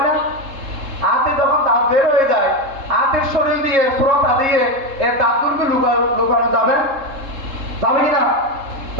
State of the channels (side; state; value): left; late; 3.7 ms